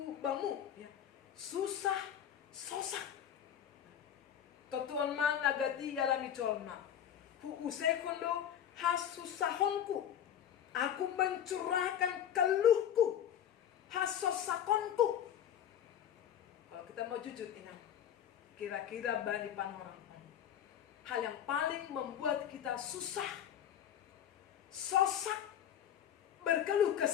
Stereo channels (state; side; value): quieter; right; 9.8 dB